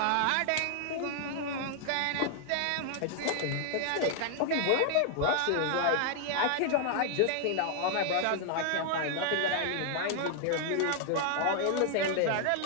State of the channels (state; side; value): different; both; correlation 0.00